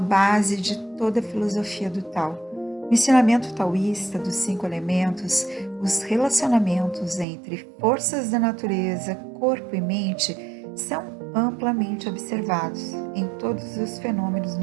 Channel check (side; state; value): left; drops out; at 7.2 s